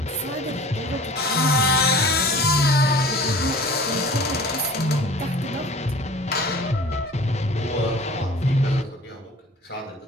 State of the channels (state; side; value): normal; both; correlation 0.44